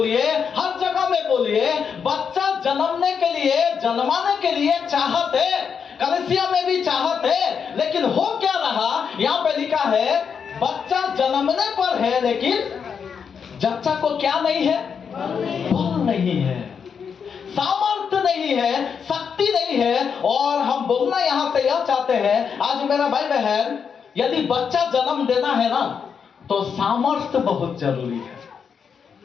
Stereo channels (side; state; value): right; quieter; 6.6 dB